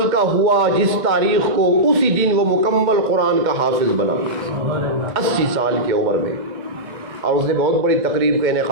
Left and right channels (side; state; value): left; late; 2.1 ms